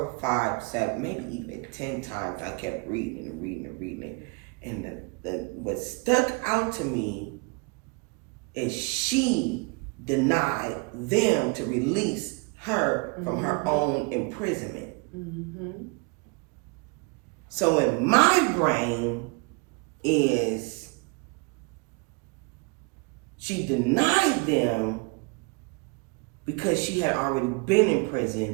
5, 7, maybe even 10 times. I kept reading and reading and reading. And what stuck out to me is she denied them to release her from her own imprisonment. So in my brain is she denied them because she had already been in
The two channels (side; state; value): left; quieter; 30.9 dB